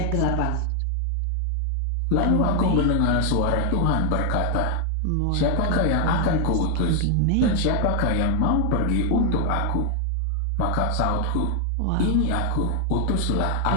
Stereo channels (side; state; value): both; different; correlation 0.00